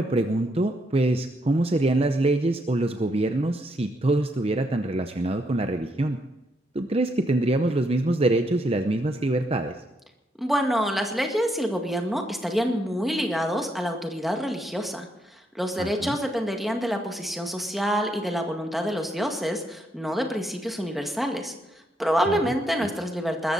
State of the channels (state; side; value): normal; both; correlation 0.76